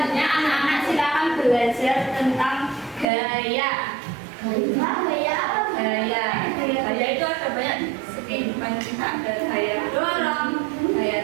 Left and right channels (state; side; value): drops out; left; at 3.1 s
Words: Anak-anak silakan belajar tentang gaya. Gaya itu ada banyak kehidupan kita. Ada gaya dorong,